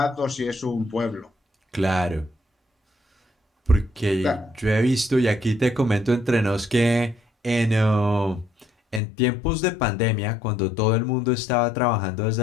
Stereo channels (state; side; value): drops out; right; at 9.0 s